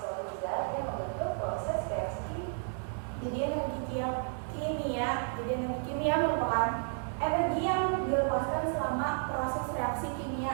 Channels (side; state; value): left; silent; 56 dB below the other